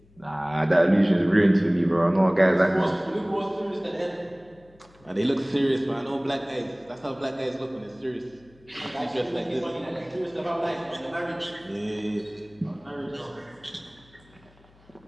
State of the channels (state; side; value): noise; left; hum, 29 dB below the sound